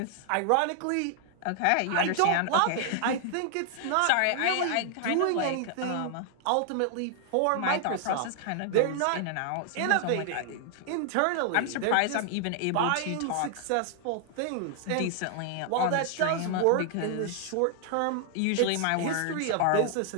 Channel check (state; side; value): different; both; correlation 0.00